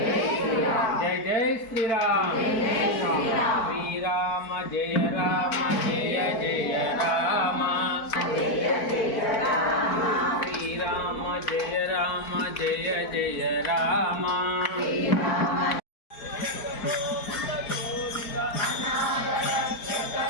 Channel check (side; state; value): right; late; 4.5 ms